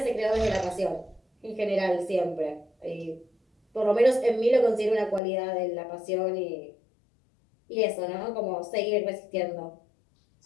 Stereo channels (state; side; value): drops out; right; at 5.2 s